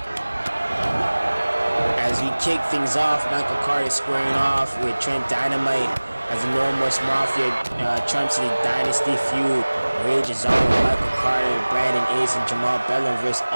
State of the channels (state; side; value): inverted; both; correlation -1.00